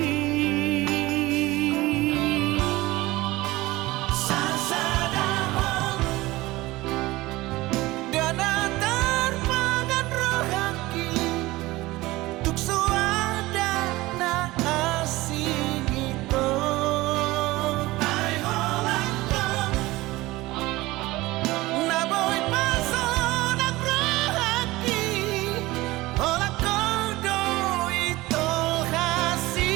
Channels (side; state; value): left; quieter; 19.4 dB